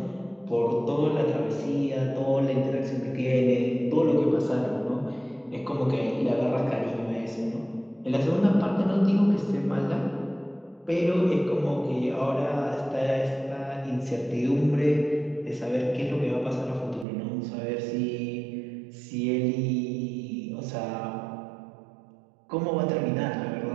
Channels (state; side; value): drops out; left; at 17.1 s